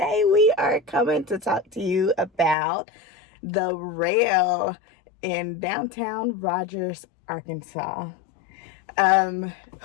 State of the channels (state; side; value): drops out; right; at 2.6 s